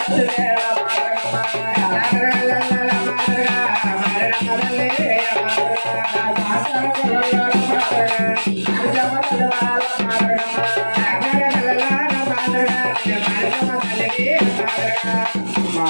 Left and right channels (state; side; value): inverted; both; correlation -1.00